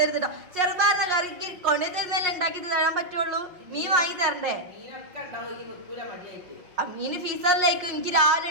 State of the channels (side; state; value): left; late; 5.5 ms